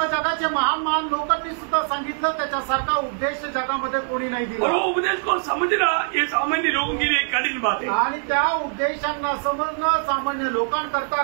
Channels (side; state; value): left; silent; 63 dB below the other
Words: जगाचे महान महान लोकांनी सुद्धा सांगितलं त्याच्यासारखा उपदेश जगामध्ये कोणी नाही और दिला। वो उपदेश को समझना ये सामान्य लोगों के लिए एक कठिन बात है, आणि त्या उपदेशांना समजणं सामान्य लोकांकरता